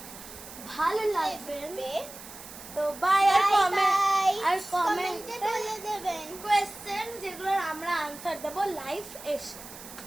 ভালো লাগবে। তো বাই। আর কমেন্টে বলে দেবেন কোয়েশ্চেন যেগুলোর আমরা আনসার দেবো লাইভ এসে।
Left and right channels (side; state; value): right; noise; hiss, 15 dB below the sound